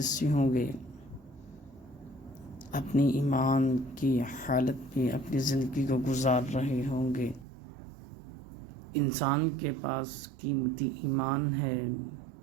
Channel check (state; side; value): drops out; left; at 7.5 s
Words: سے ہوں گے، اپنی ایمان کی حالت میں اپنی زندگی کو گزار رہے ہوں گے۔ انسان کے پاس قیمتی ایمان ہے،